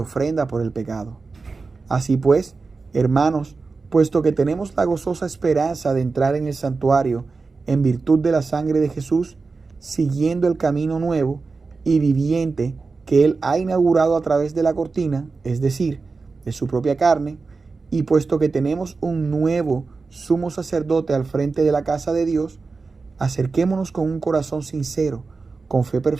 por el pecado. Así pues, hermanos, puesto que tenemos la gozosa esperanza de entrar en el santuario en virtud de la sangre de Jesús, siguiendo el camino nuevo y viviente que Él ha inaugurado a través de la cortina, es decir, de su propia carne, y puesto que tenemos un nuevo sumo sacerdote al frente de la casa de Dios, acerquémonos con un corazón sincero, con fe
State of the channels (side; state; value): left; quieter; 4.2 dB